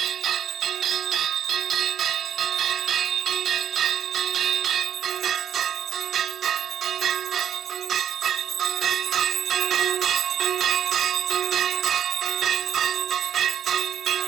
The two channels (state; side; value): quieter; left; 9.4 dB